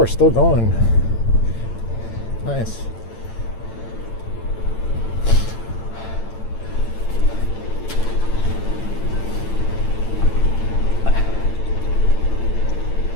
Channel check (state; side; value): late; right; 8.9 ms